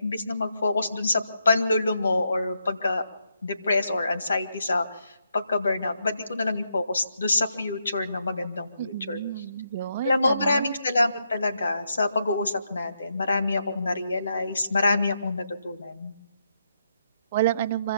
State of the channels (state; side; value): inverted; both; correlation -0.80